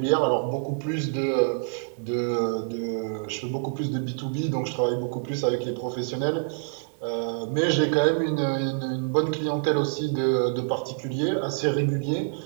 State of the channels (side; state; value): left; silent; digital silence